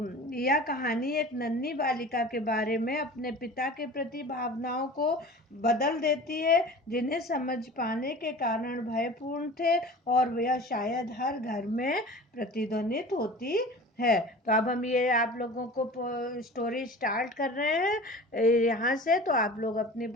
यह कहानी एक नन्ही बालिका के बारे में अपने पिता के प्रति भावनाओं को बदल देती है जिन्हें समझ पाने के कारण भयपूर्ण थे और यह शायद हर घर में प्रतिध्वनित होती है। तो अब हम ये आप लोगों को स्टोरी स्टार्ट कर रहे हैं यहाँ से। तो आप लोग अपनी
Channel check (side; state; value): both; normal; correlation 0.39